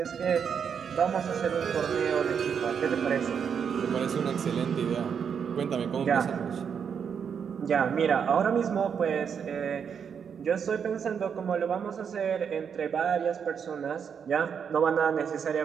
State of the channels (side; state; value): left; quieter; 7.1 dB